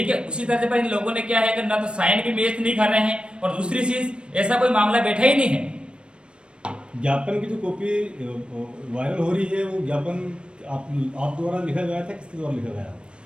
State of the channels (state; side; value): late; left; 0.056 ms